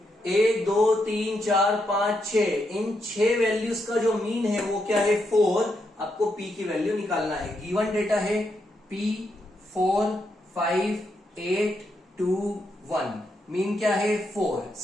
1 2 3 4 5 6, इन 6 वैल्यूज का जो मीन है वो क्या है? 4। आपको P की वैल्यू निकालना है। गिवन डेटा है P 4 5 8 2 1, मीन क्या है? 4।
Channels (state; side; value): normal; both; correlation 0.81